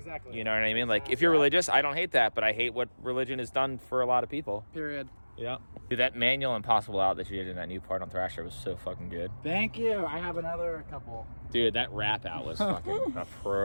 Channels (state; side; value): inverted; both; correlation -1.00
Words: You know what I mean? Like if you're religious, I don't hate that, but I hate what religion has done for a lot of people. Period. Yeah. Dude, that manual Impossible out that you did in that new part on Thrasher was so fucking good. Thank you. I have another couple. Dude, that rap out was fucking